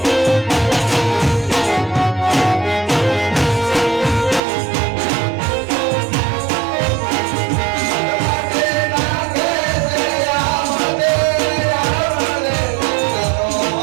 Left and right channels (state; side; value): drops out; left; at 4.4 s